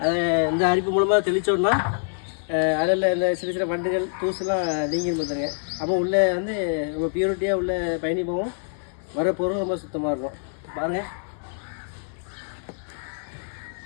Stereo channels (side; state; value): right; silent; 62 dB below the other